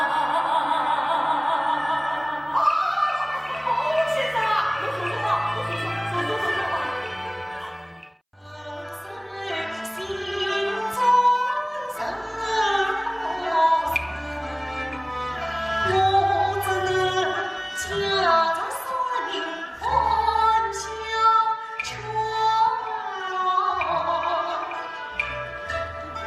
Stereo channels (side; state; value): both; identical; correlation 1.00